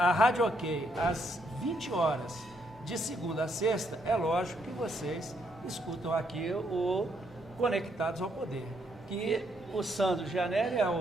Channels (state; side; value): normal; both; correlation 0.74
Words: Rádio OK às 20 horas, de segunda a sexta, é lógico que vocês escutam aqui o Conectados ao Poder, que o Sandro Gianelli é